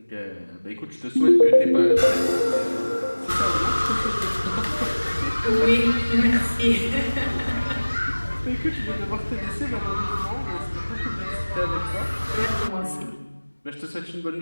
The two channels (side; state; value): both; inverted; correlation -1.00